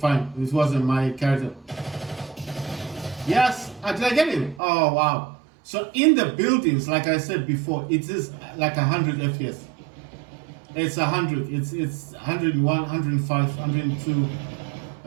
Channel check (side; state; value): left; drops out; at 4.6 s